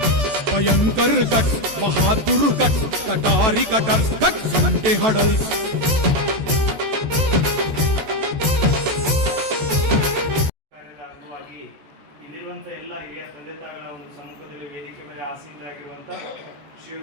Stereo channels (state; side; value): late; left; 14 ms